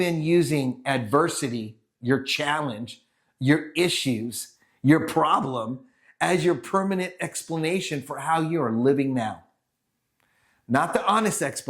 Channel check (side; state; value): both; identical; correlation 1.00